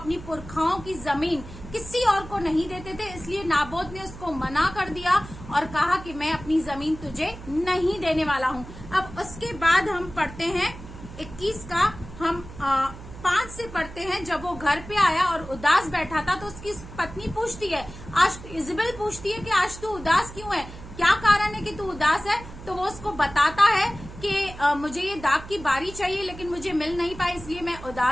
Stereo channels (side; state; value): right; noise; hum, 14 dB below the sound